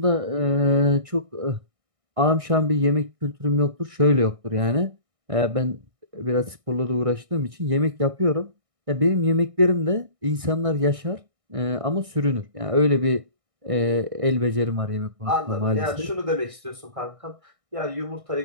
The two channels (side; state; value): left; late; 1.6 ms